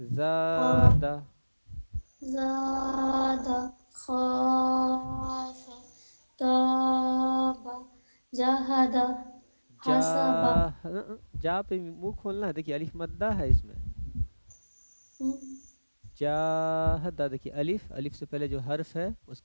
زادہ، خاف، تاب، جہدہ، جا. حسبہ. جا پہ منہ کھولنا ہے، دیکھیے الف مدہ ہے اس میں. جاہدہ، دیکھیے الف، الف سے پہلے جو حرف ہے اس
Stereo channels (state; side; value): inverted; both; correlation -1.00